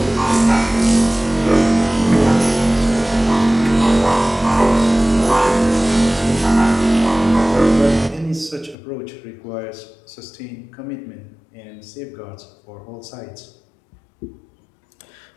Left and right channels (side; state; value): right; drops out; at 8.8 s